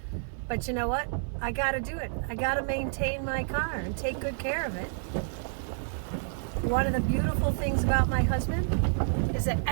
But you know what? I gotta do it. I gotta maintain my car and take good care of it. One of the beautiful things about my husband is that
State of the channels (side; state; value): left; silent; digital silence